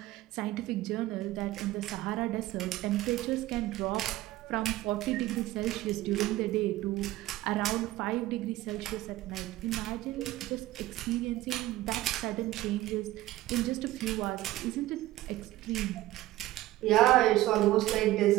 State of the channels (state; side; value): quieter; left; 16.3 dB